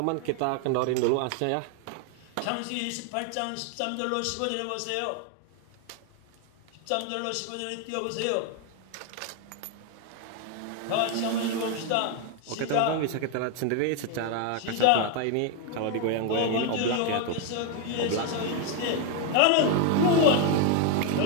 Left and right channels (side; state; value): both; different; correlation 0.01